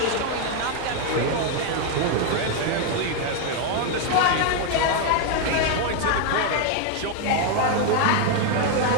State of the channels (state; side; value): different; both; correlation 0.01